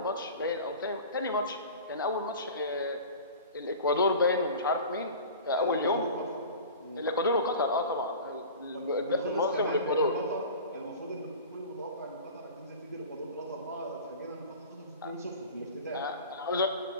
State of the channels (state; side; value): inverted; both; correlation -0.38